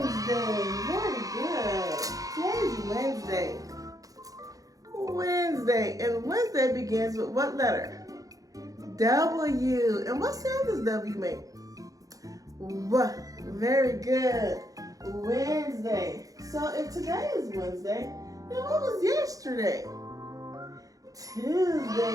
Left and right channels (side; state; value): left; late; 0.17 ms